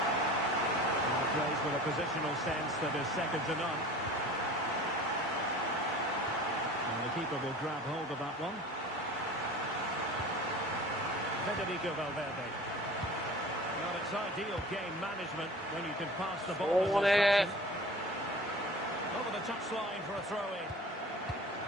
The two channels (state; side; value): normal; both; correlation 0.40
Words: Plays with a positional sense that is second to none. And the keeper will grab hold of that one. Federico Valverde. Well, it's ideal game management when you can pass the ball in this fashion. Over the touchline for a throw-in.